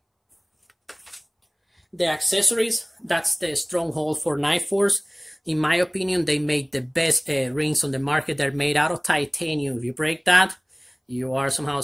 The accessories, that's the stronghold for NightForce. In my opinion, they make the best rings on the market. They're made out of titanium. If you break that, you are somehow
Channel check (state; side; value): identical; both; correlation 1.00